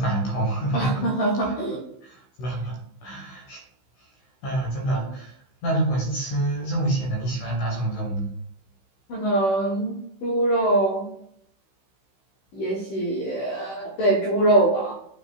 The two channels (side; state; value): right; late; 16 ms